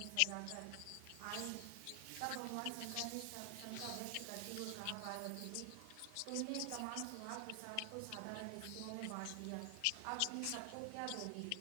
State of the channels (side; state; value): both; different; correlation 0.00